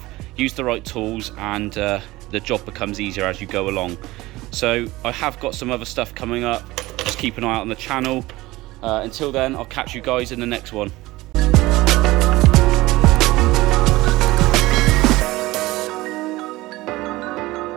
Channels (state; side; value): quieter; left; 19.2 dB